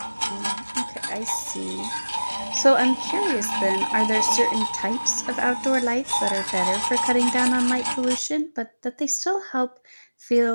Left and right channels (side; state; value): both; inverted; correlation -1.00